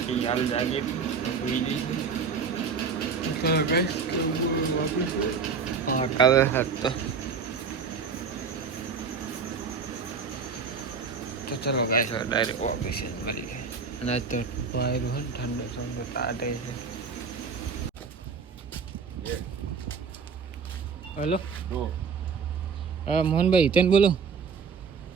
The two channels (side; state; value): left; quieter; 5.5 dB